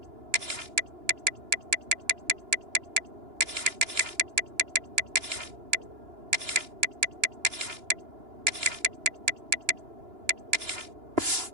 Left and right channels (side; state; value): left; late; 2.9 ms